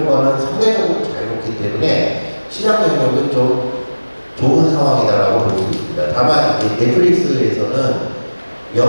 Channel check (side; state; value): both; inverted; correlation -1.00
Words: 거는 상대적으로 자유롭기 때문에 시장 영역은 좀 좋은 상황이다라고 볼 수 있습니다. 다만 이제 넷플릭스에서는